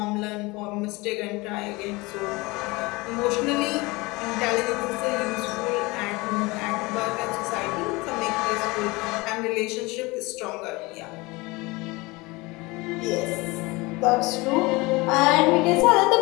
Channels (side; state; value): right; quieter; 23.6 dB